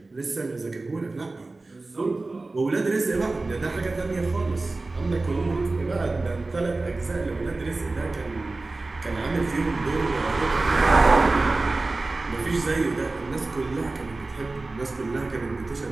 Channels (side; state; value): left; quieter; 3.3 dB